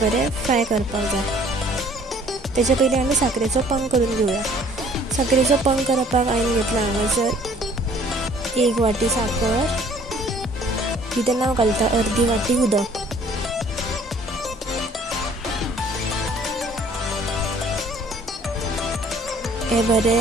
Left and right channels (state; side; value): normal; both; correlation 0.56